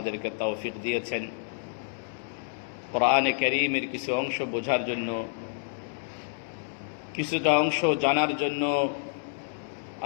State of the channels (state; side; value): silent; right; 59 dB below the other